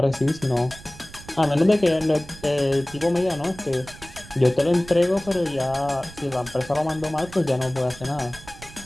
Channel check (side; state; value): right; noise; rumble, 18 dB below the sound